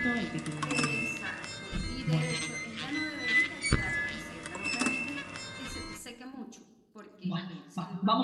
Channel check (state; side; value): identical; both; correlation 1.00